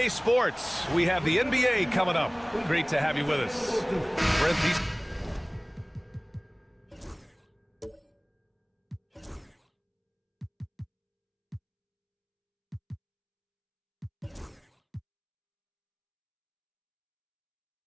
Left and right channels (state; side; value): identical; both; correlation 1.00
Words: Sports. We have the NBA coming up. Great to have you with us. Brent, these